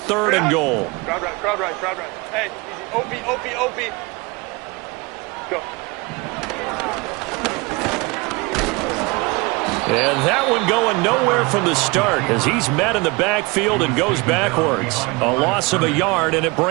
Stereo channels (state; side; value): quieter; left; 25.9 dB